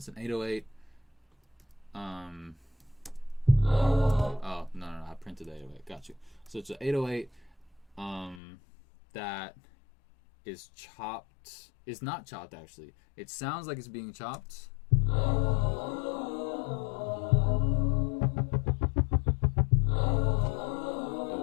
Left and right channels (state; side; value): drops out; right; at 8.4 s